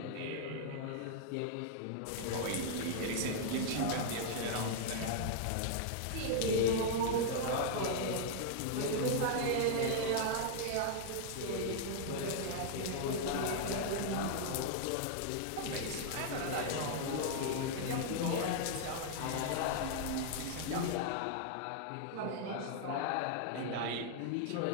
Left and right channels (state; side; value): different; both; correlation -0.01